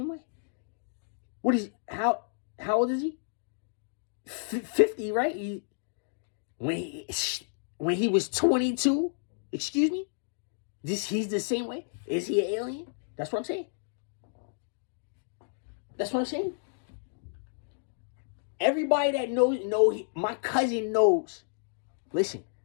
way. What is, how old is he? 50, right? When he was 22, excuse me? He's the same way? Is he an alien? That's what I'm saying. That's what I'm saying. Everybody that knows, my cousin knows. Listen.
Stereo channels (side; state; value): right; silent; digital silence